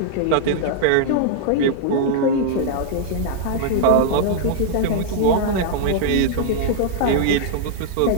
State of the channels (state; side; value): different; both; correlation -0.01